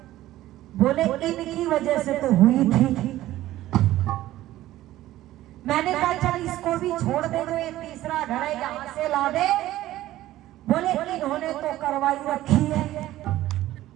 बोले इनकी वजह से तो हुई थी। मैंने कहा चल इसको भी छोड़ दे, जो ये तीसरा घर है यहाँ से ला दे। बोले इन्होंने तो करवाई रखी है।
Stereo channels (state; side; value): quieter; left; 15.0 dB